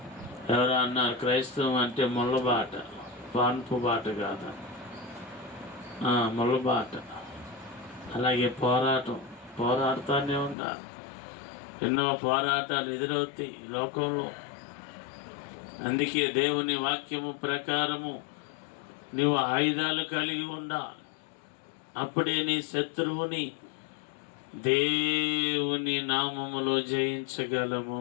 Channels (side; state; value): right; drops out; at 10.6 s